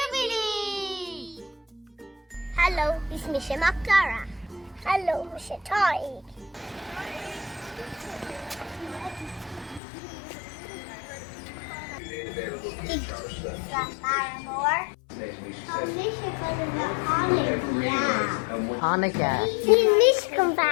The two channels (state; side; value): drops out; right; at 9.8 s